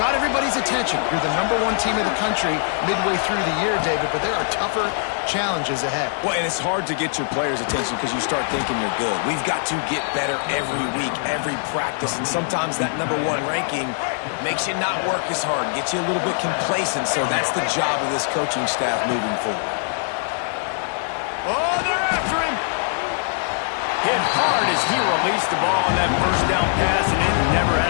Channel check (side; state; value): right; silent; 62 dB below the other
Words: everybody's attention. You're the #1 team in the country midway through the year, David, but there are tougher challenges ahead. Well, and it's hard to get your players' attention because you start thinking you're good. We've got to get better every week, every practice, and sometimes that #1 ranking makes you not work as hard, gets you a little bit complacent, so that's the job of this coaching staff moving forward. Oh, they're after him. Hit hard as he released the ball on that first down pass, and it never